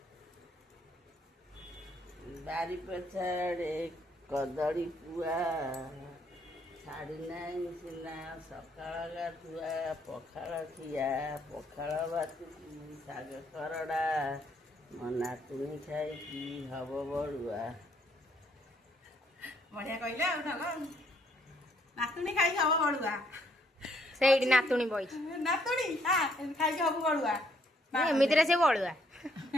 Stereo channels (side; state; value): both; normal; correlation 0.69